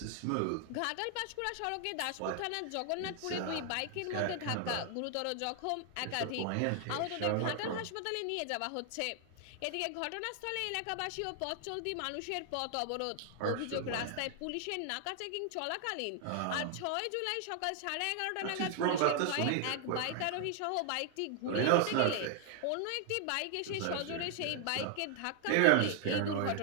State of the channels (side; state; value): both; different; correlation 0.00